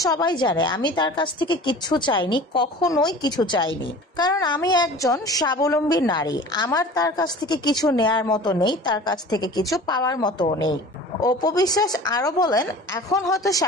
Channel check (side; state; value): both; normal; correlation 0.41